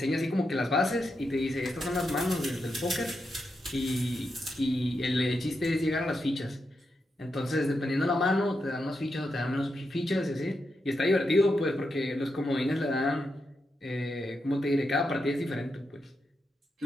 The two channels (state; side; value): normal; both; correlation 0.85